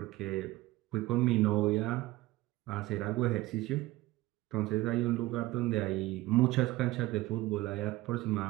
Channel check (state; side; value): quieter; left; 18.5 dB